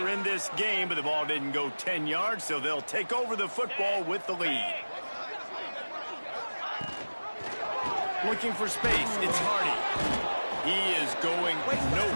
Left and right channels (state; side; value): inverted; both; correlation -1.00